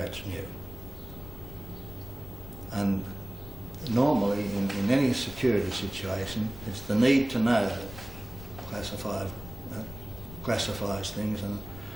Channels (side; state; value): left; noise; rumble, 13 dB below the sound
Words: knew. And normally in any security situation, it's the need to know that classifies things and